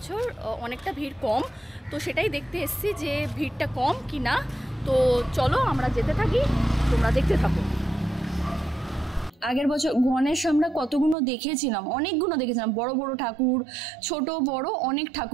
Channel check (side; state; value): left; drops out; at 11.2 s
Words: অনেকটা ভিড় কম, তো সেটাই দেখতে এসেছি যে ভিড়টা কম কি না। তো চলো আমরা যেতে থাকি, তোমরা দেখতে থাকো। আগের বছর গণেশ আমরা কতগুলো দেখেছিলাম, অনেকগুলো দেখেছিলাম, বড় বড় ঠাকুর, ছোট বড় অনেক